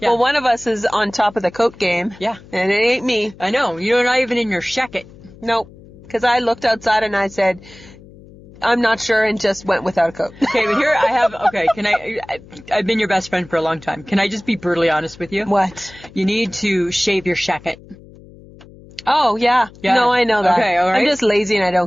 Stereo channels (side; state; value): left; noise; hum, 22 dB below the sound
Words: Yeah. Well, one of us is on top of the coat game. Yeah. And it ain't me. I know. You're not even in your shacket. Nope. Because I looked outside and I said, I'm not sure, and just went without a coat. Okay, but here I have, I've been your best friend for a long time. Can I just be brutally honest with you? What? You need to shave your shacket. Oh, yeah. No, I know that. Okay, all right. I'm just lazy and I